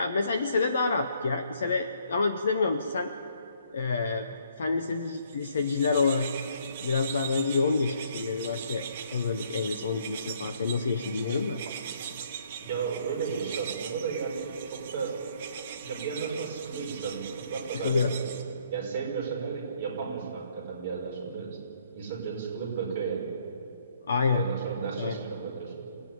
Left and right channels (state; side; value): inverted; both; correlation -0.66